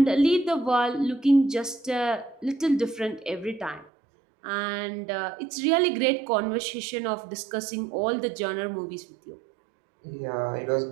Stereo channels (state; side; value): drops out; left; at 3.9 s